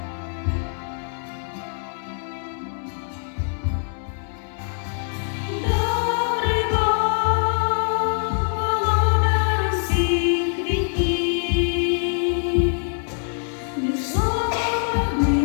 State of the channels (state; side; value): silent; right; 57 dB below the other